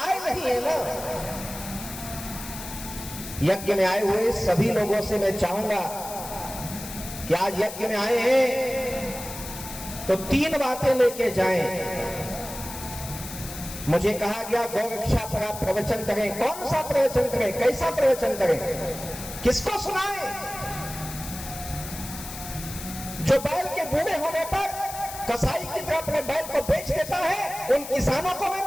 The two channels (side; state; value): left; noise; hiss, 11 dB below the sound